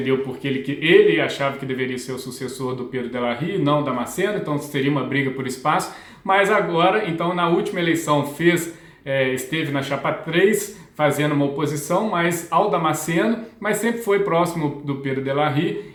porque ele achava que deveria ser o sucessor do Pedro de la Rive, não Damasceno, então seria uma briga por espaço, mas agora, então na última eleição esteve na chapa 3, fazendo uma oposição mais ao Damasceno, mas sempre foi próximo do Pedro de la Rive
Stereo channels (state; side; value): identical; both; correlation 1.00